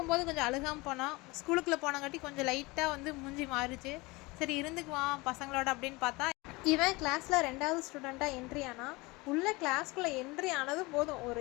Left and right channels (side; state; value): right; quieter; 23.9 dB